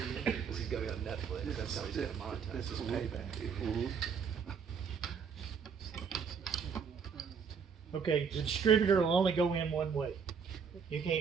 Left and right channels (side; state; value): left; quieter; 6.3 dB